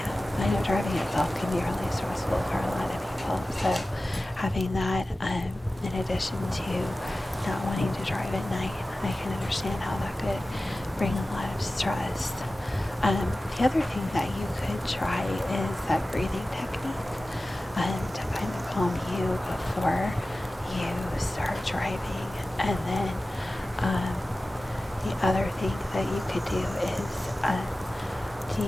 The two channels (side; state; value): both; normal; correlation 0.96